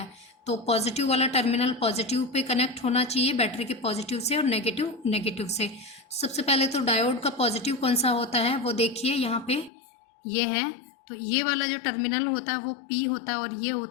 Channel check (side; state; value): right; drops out; at 9.7 s